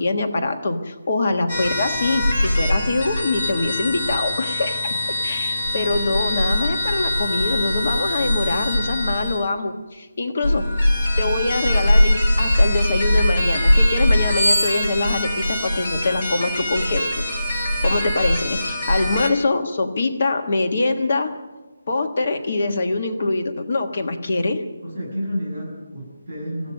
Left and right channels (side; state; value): both; inverted; correlation -0.90